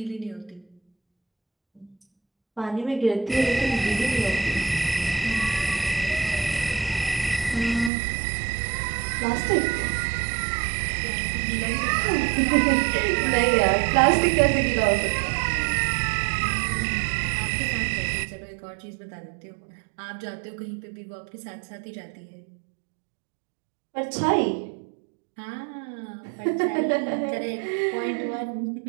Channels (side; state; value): left; drops out; at 7.9 s